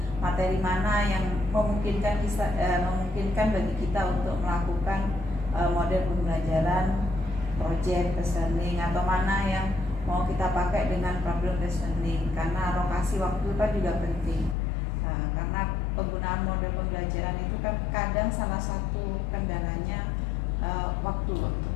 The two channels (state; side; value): drops out; right; at 14.6 s